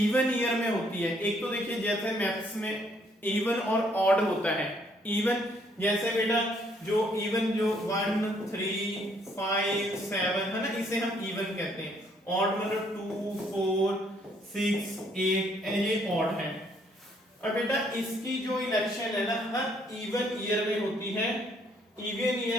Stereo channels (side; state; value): both; normal; correlation 0.67